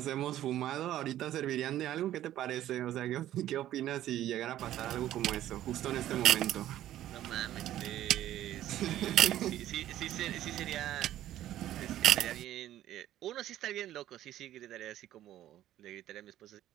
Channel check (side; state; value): left; quieter; 12.9 dB